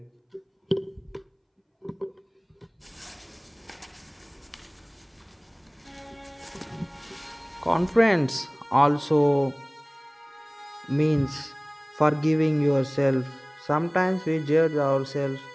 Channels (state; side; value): identical; both; correlation 1.00